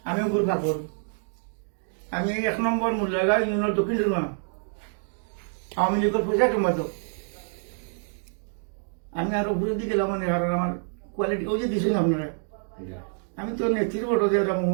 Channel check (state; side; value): silent; left; digital silence